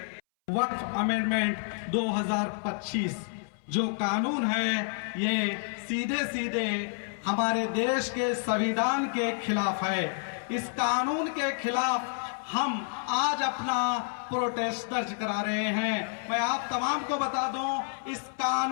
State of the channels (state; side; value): silent; right; 58 dB below the other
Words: वक्फ अमेंडमेंट 2025 जो कानून है ये सीधे सीधे हमारे देश के संविधान के खिलाफ है। इस कानून के खिलाफ हम आज अपना प्रोटेस्ट दर्ज करा रहे हैं। मैं आप तमाम को बता दूं, इस